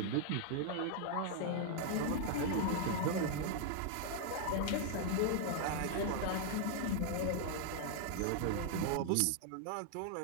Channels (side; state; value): both; different; correlation 0.00